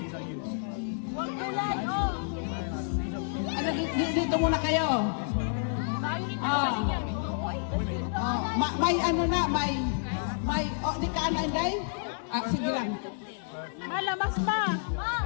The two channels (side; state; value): right; silent; digital silence